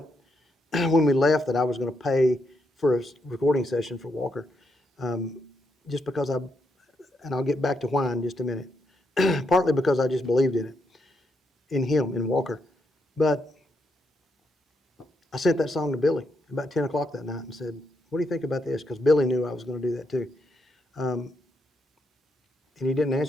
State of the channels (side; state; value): both; normal; correlation 0.79